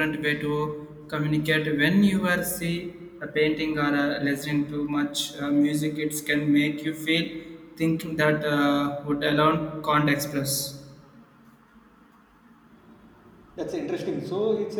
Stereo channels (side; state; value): both; identical; correlation 1.00